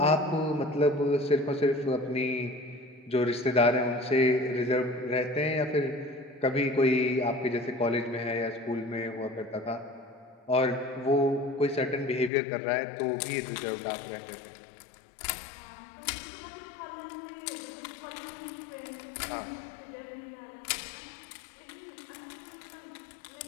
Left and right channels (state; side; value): drops out; right; at 12.3 s